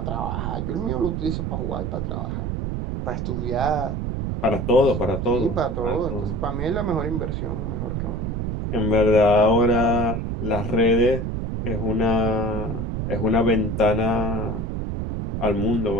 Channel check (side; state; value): right; noise; rumble, 3 dB below the sound